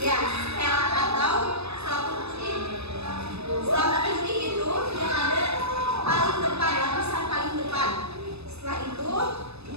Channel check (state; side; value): late; left; 0.79 ms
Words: Ya, sel atau selaput putih. Selaput putih itu yang ada paling depan, lapisan paling depan. Setelah itu